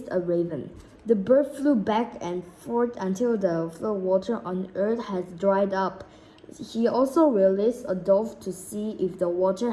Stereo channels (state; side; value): identical; both; correlation 1.00